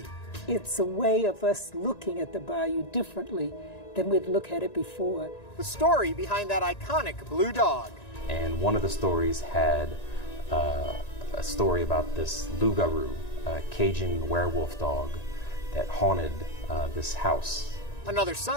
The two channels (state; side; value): late; right; 1.9 ms